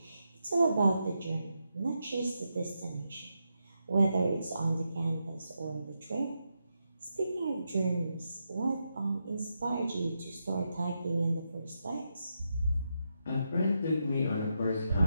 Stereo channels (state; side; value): inverted; both; correlation -0.84